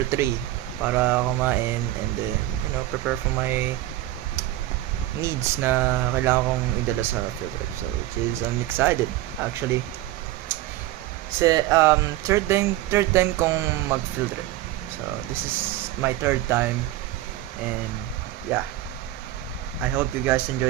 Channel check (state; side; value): quieter; left; 15.3 dB